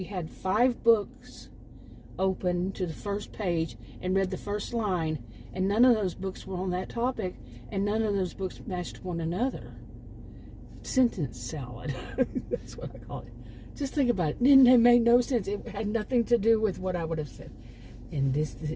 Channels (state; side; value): identical; both; correlation 1.00